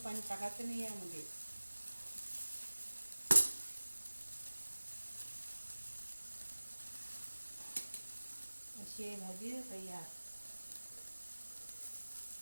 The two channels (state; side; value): inverted; both; correlation -1.00